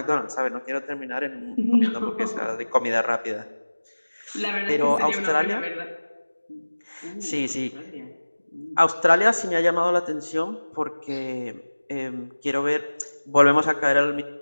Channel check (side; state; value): both; inverted; correlation -1.00